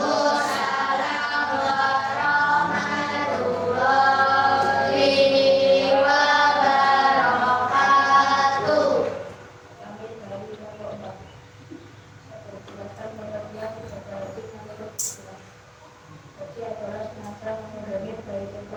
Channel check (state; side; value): identical; both; correlation 1.00